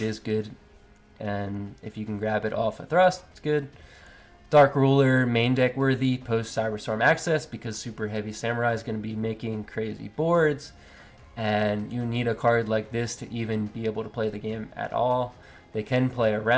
good, and if you can grab it off a Thrust, it's good. Dark Ruler, main deck worthy post Cyberstorm Access because Super Heavy Samurai is going to be making crazy boards, and you need a card like this to even be able to play the game at all. They can play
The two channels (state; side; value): identical; both; correlation 1.00